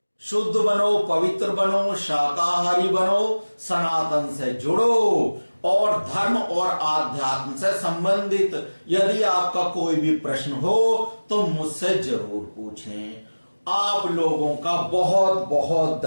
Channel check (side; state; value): both; inverted; correlation -1.00